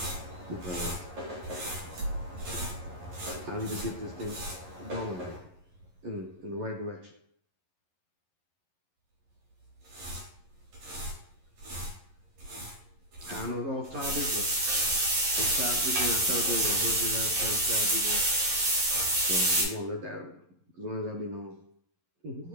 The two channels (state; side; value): late; left; 11 ms